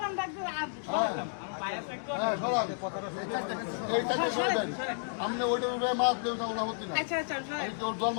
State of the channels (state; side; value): silent; right; digital silence